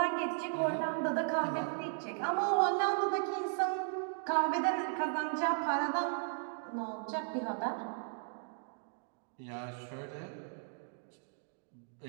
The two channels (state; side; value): silent; left; digital silence